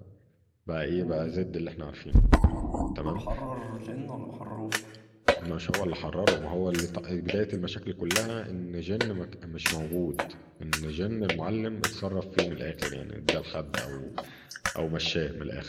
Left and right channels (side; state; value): both; identical; correlation 1.00